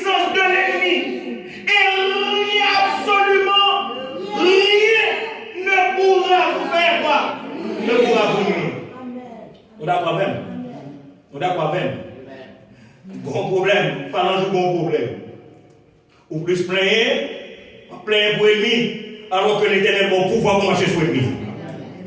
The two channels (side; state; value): both; identical; correlation 1.00